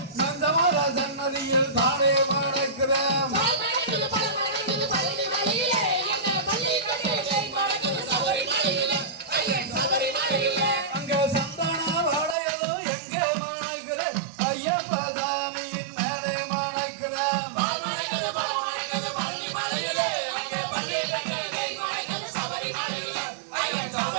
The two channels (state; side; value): drops out; left; at 12.4 s